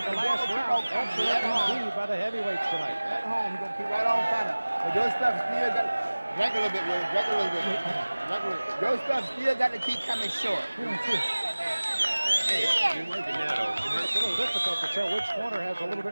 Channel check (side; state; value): both; inverted; correlation -1.00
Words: the last round, excellent indeed by the heavyweights tonight. At home, he's going to keep right on fighting. But your stuff still got drink a little bit, Will. Drink a little bit. Your stuff still got to keep coming short. Hey, you're working now, though. It's a little difficult to tell which corner has a little